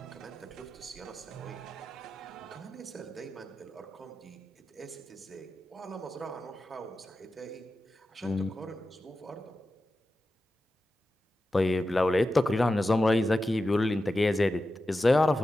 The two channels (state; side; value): normal; both; correlation 0.92